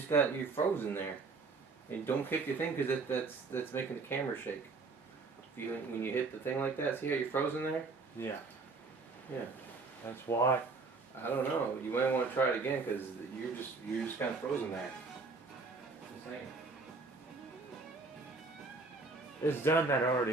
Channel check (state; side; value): quieter; left; 4.0 dB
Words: got your frozen there, and don't kick your thing because that's making the camera shake. When you hit the thing like that, see how you're frozen there? Yeah. Yeah. That's why. I don't know. You might want to try it again because you're just kind of frozen there. Just saying. It's done that